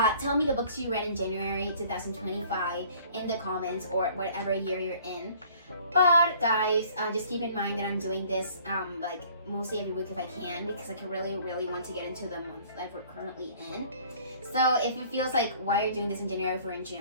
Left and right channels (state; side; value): inverted; both; correlation -0.54